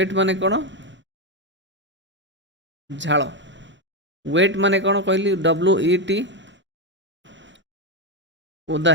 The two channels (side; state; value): both; normal; correlation 0.07